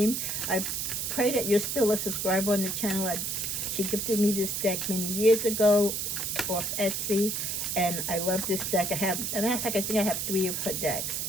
I pray that you're still a subscriber on the channel. She gifted me this deck many years ago off Etsy, and I love this deck. As a matter of fact, I think I have 3 of her decks.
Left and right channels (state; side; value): noise; right; hiss, 2 dB below the sound